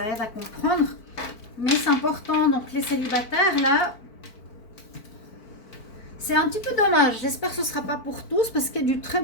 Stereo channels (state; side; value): late; right; 4.5 ms